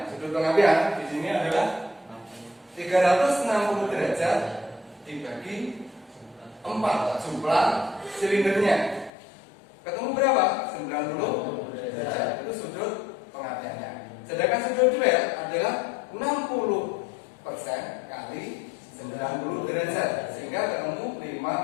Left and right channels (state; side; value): drops out; right; at 9.1 s